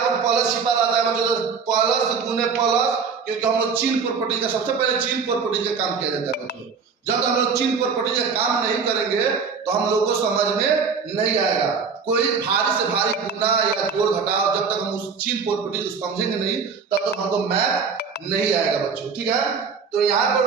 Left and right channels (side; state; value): left; quieter; 5.6 dB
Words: पर प्लस छिपा रहता है बच्चों, तो प्लस गुने प्लस, क्योंकि हम लोग चिन्ह प्रॉपर्टी का सबसे पहले चिन्ह प्रॉपर्टी का काम किया जाता है बच्चों। जब हम लोग चिन्ह प्रॉपर्टी का काम नहीं करेंगे तो हम लोग को समझ में नहीं आएगा। कोई भारी से भारी गुना या जोड़ घटाव जब तक हम उस चिन्ह प्रॉपर्टी को समझेंगे नहीं तब तक हमको मैथ नहीं आएगा बच्चों, ठीक है। तो यहाँ